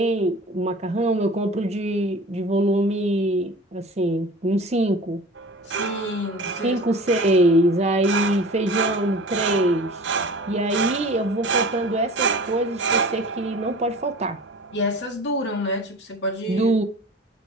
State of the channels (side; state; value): both; normal; correlation 0.40